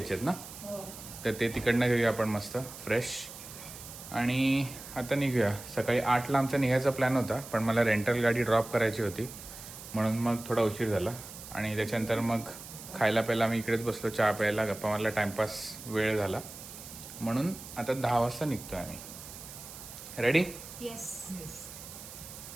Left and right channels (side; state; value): right; noise; hiss, 13 dB below the sound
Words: आहेत ना, तर ते तिकडनं घेऊया आपण मस्त फ्रेश. आणि आता निघूया. सकाळी 8ला आमचा निघायचा प्लॅन होता, पण मला रेंटल गाडी ड्रॉप करायची होती म्हणून मग थोडा उशीर झाला. आणि त्याच्यानंतर मग खायला प्यायला आम्ही इकडेच बसलो, चहा प्यायला, गप्पा मारला, टाईमपास वेळ झाला म्हणून आता 10 वाजता निघतोय आम्ही. रेडी? येस.